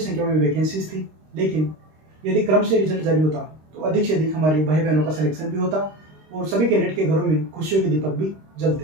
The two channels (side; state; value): left; late; 26 ms